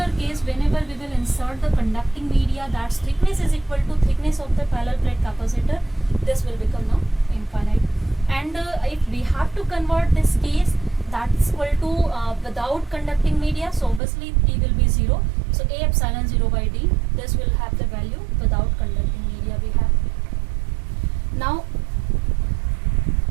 case, whenever we will insert the conducting media, that's thickness is equal to thickness of the parallel plate capacitor, this will become now infinite. And if we have to convert this case, that's equal to without conducting media, so obviously T will be 0. So A epsilon 0 by D, this will have the value without conducting media we have. Now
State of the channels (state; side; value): drops out; left; at 14.0 s